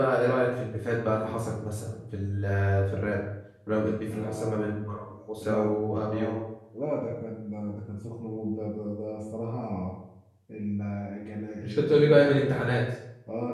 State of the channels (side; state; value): both; identical; correlation 1.00